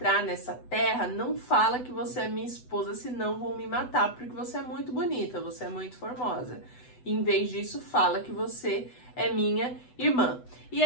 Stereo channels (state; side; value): late; right; 8.0 ms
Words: nessa terra, não fala que você é minha esposa, senão vão me matar, porque você é muito bonita, você é muito formosa. Em vez disso, fala que você é minha irmã. E